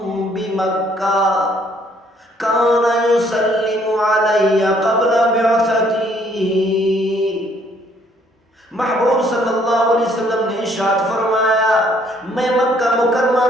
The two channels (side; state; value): both; normal; correlation 0.64